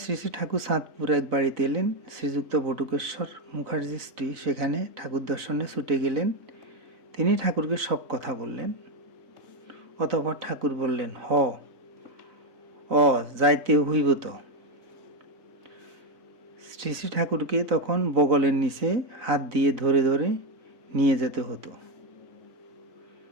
শ্রী শ্রী ঠাকুর সাতপুর এক বাড়িতে এলেন। শ্রীযুক্ত বটুকেশ্বর মুখার্জির স্ত্রী সেখানে ঠাকুর দর্শনে ছুটে গেলেন। তিনি ঠাকুরকে সব কথা বললেন। অতঃপর ঠাকুর বললেন, যাইতে হইব তো। শ্রী শ্রী ঠাকুরকে তখন বগলের নিচে হাত দিয়ে ধরে ধরে নিয়ে যেতে হতো।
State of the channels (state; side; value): late; left; 3.9 ms